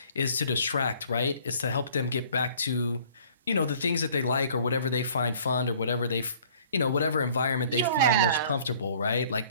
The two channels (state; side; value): inverted; both; correlation -0.55